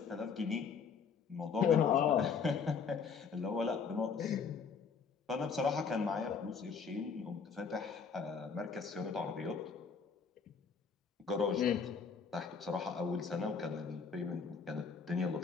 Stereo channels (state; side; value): quieter; right; 5.9 dB